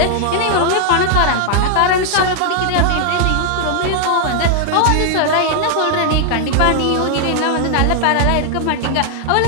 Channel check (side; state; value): both; different; correlation 0.00